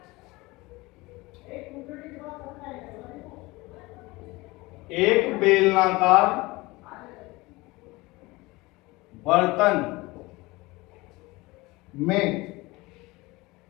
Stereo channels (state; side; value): quieter; right; 22.1 dB